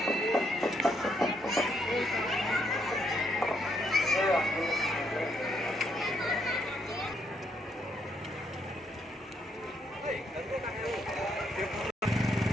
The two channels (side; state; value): both; normal; correlation 0.74